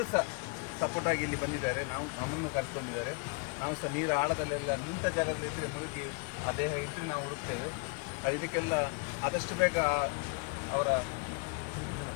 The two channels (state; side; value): quieter; right; 32.8 dB